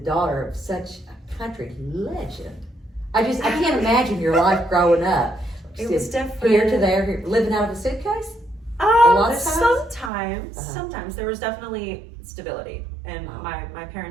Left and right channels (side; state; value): left; drops out; at 10.1 s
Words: of such a country legend? I can't imagine your life growing up. It was Just different. Here to there, living out of a suitcase? lot of times? Sometimes there was definitely stability, and Wow. my